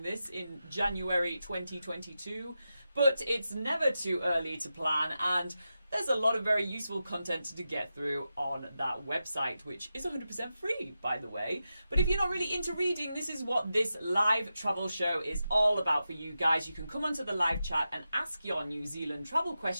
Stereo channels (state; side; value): inverted; both; correlation -0.90